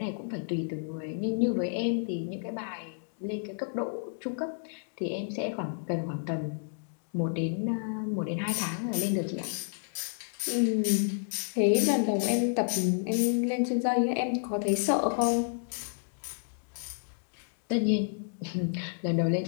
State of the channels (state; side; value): silent; right; digital silence